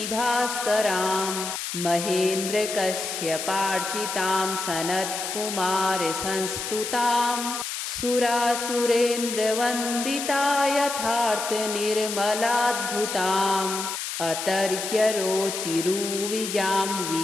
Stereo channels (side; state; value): left; noise; hiss, 5 dB below the sound